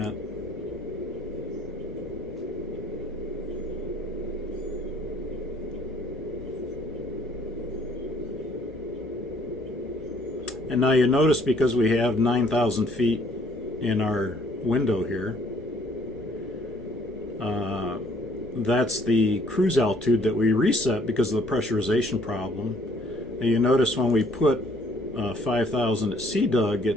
And now you notice, because we have 9,000 feet in our window here, that's the cruise altitude that we reset because of the pressurization problem. And you notice when we put 5,000 at CDUG,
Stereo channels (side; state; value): both; normal; correlation 0.61